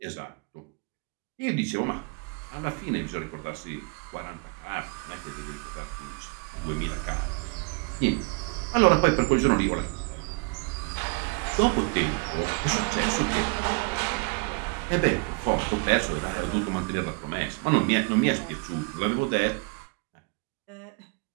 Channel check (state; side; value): quieter; left; 33.2 dB